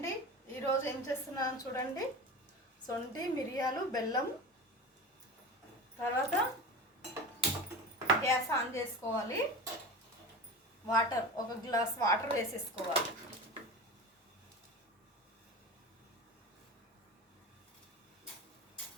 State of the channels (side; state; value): both; normal; correlation 0.30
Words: ఈరోజు ఏం చేస్తున్నాను చూడండి. సొంటి మిరియాలు బెల్లం. తర్వాత గ్యాస్ ఆన్ చేసుకోవాలి. వాటర్, ఒక గ్లాస్ వాటర్ వేసేసుకోవాలి.